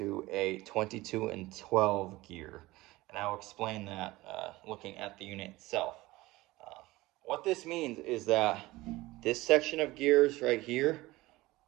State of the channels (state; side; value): quieter; left; 19.4 dB